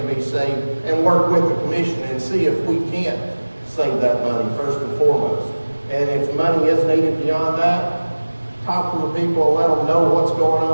be saved and work with the commission and see if we can't save that money first and foremost. And if money is needed beyond that, talk to the people and let them know what's going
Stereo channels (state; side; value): inverted; both; correlation -1.00